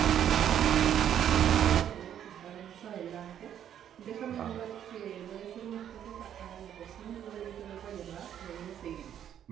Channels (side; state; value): left; quieter; 9.9 dB